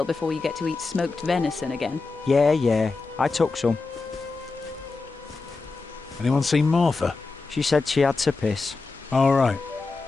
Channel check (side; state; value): right; quieter; 3.9 dB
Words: before you get to eat smoked venison again. Yeah, I took some. Anyone seen Martha? She said she had to piss. All right.